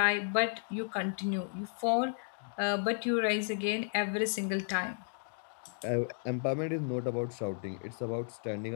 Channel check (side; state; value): right; silent; digital silence